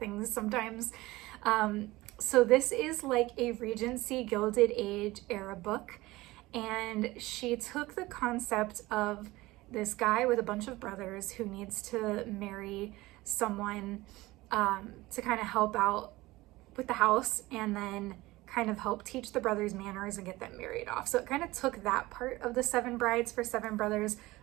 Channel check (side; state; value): left; quieter; 19.4 dB